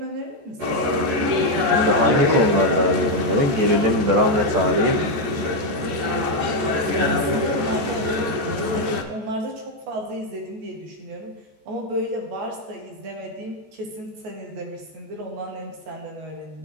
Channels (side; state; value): left; late; 14 ms